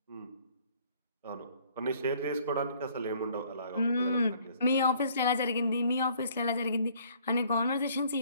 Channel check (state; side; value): inverted; both; correlation -0.59